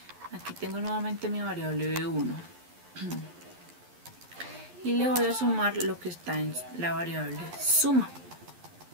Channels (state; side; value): late; left; 11 ms